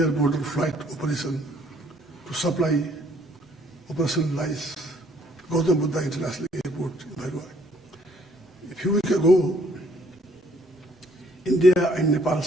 border flight operation to supply operationalize Gautam Buddha International Airport in Bhairava. A few weeks ago, India and Nepal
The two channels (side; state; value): both; normal; correlation 0.64